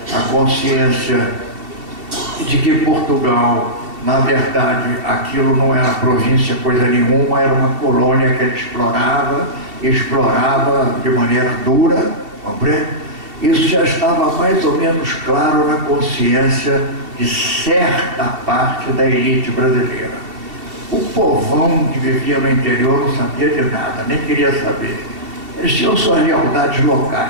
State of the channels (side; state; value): left; late; 2.7 ms